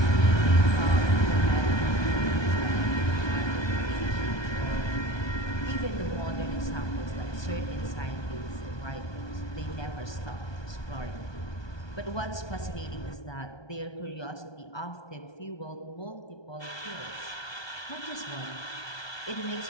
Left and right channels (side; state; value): right; late; 1.2 ms